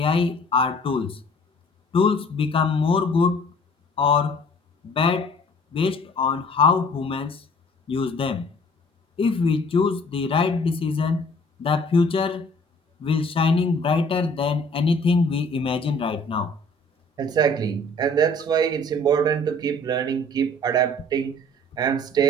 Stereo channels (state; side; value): normal; both; correlation 0.53